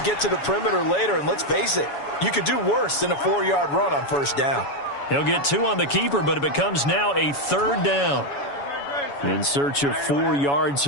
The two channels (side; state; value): right; late; 7.1 ms